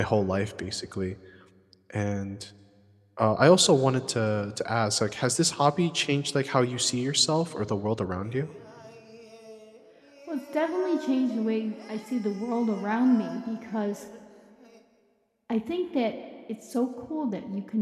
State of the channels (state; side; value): identical; both; correlation 1.00